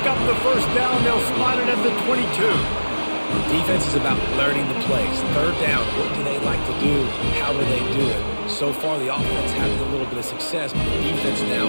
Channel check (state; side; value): inverted; both; correlation -1.00